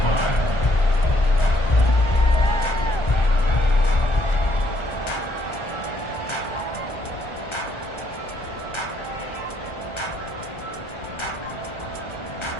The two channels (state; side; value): late; right; 1.4 ms